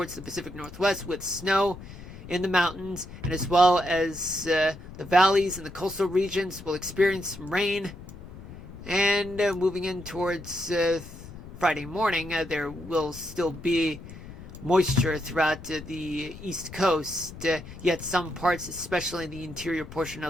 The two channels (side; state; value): left; noise; rumble, 14 dB below the sound